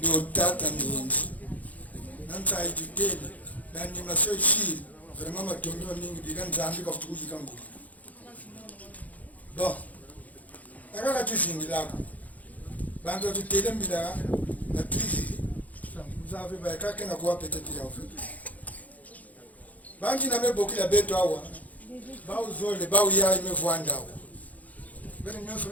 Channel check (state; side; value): late; right; 0.076 ms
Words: tata mingi nanta itutele nani maso shiri vraiment matondo mingi diga nzambi ka futukuji kangu bon akaka tuzingi lako bango tutele mbila na tuzi vous avez ba kaka na kwa peut-être ya fait bangi na meboki la beto awa ba uzole ba uya imevwanda awa bene nyoso